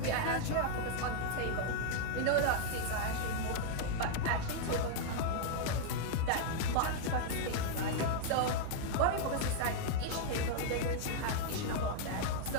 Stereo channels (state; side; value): different; both; correlation -0.01